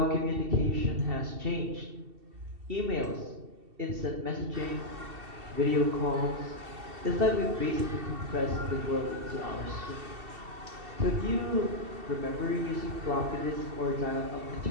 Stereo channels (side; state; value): left; late; 2.7 ms